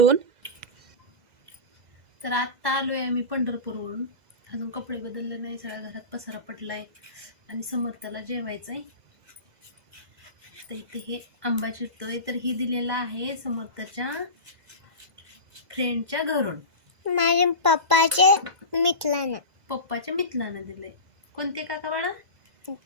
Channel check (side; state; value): left; late; 2.0 ms